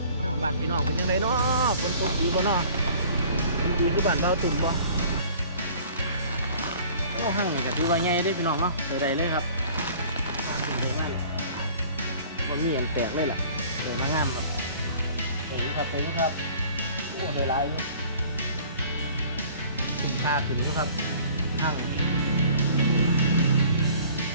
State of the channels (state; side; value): inverted; both; correlation -0.50